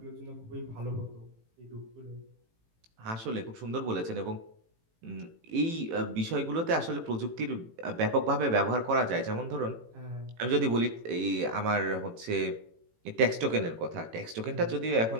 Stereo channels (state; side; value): late; left; 18 ms